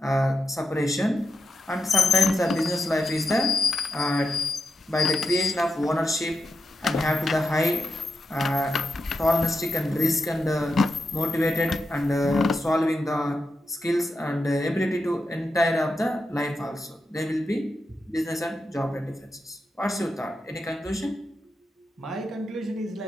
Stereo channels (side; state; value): both; normal; correlation 0.88